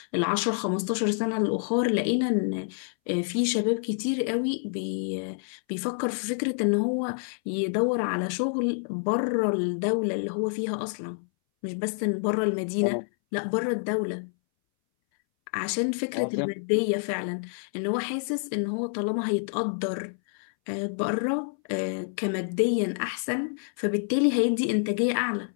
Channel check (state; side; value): silent; right; 59 dB below the other